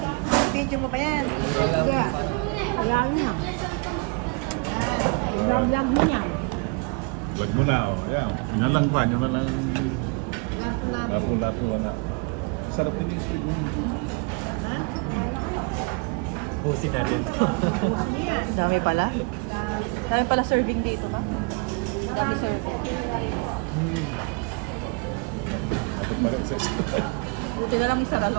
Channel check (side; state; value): left; quieter; 32.0 dB